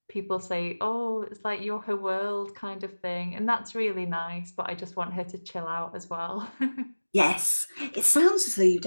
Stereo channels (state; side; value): inverted; both; correlation -1.00